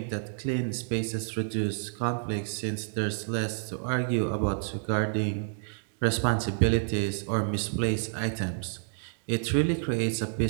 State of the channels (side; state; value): left; silent; digital silence